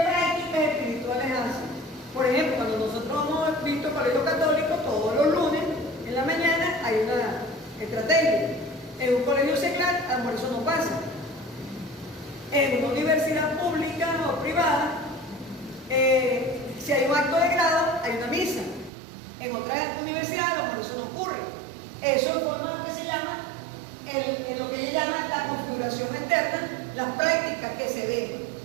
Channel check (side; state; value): left; drops out; at 18.9 s